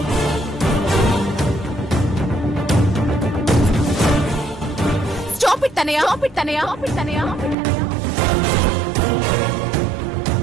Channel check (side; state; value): left; drops out; at 7.6 s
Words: Stop it Tanaya, stop it Tanaya, stop it తనయ.